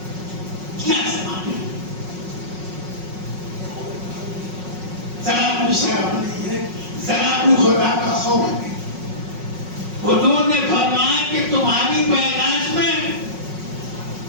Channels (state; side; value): late; left; 5.4 ms